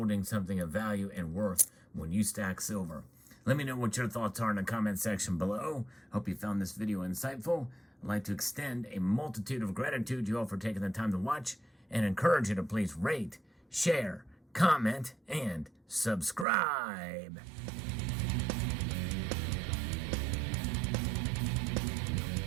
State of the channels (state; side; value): drops out; left; at 16.4 s